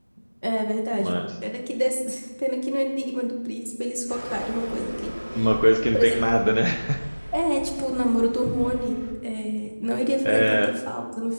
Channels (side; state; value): both; inverted; correlation -1.00